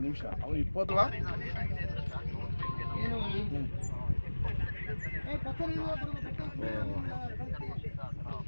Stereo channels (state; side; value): inverted; both; correlation -1.00